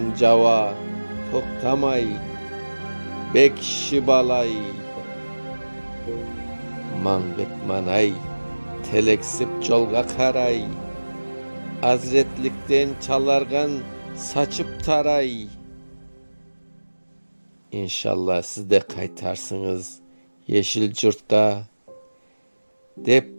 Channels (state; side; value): inverted; both; correlation -1.00